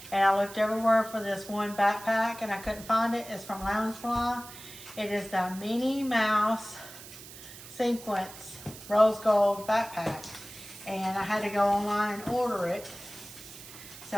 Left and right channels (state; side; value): noise; right; hiss, 16 dB below the sound